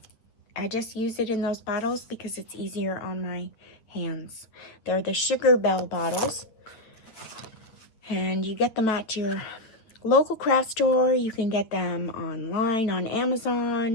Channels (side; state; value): right; late; 9.2 ms